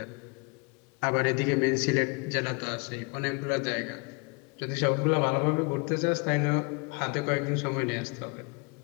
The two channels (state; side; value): quieter; right; 31.7 dB